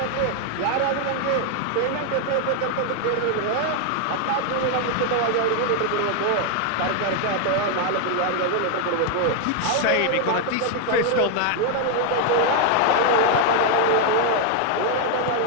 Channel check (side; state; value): both; different; correlation 0.00